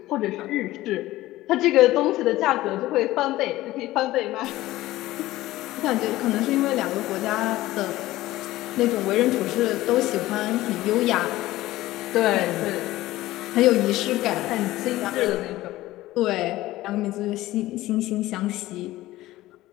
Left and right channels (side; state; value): right; quieter; 16.6 dB